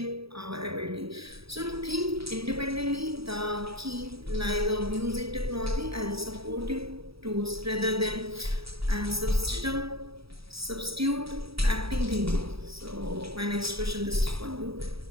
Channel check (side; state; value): left; late; 0.77 ms